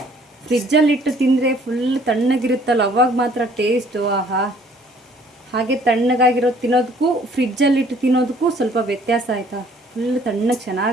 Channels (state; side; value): normal; both; correlation 0.59